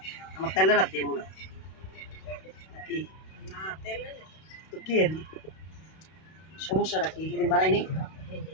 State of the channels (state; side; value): late; right; 32 ms